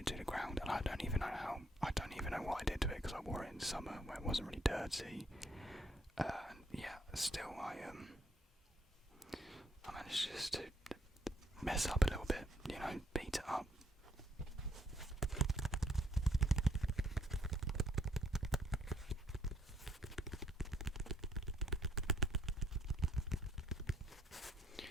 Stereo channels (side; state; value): both; normal; correlation 0.69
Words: to the ground, and I don't even know what I did to it because I wore it in summer where it wasn't really dirty. Yeah, still I managed just to mess up a little bit, beat it up.